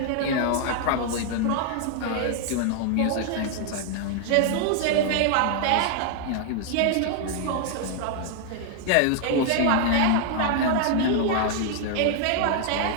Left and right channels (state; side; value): different; both; correlation 0.00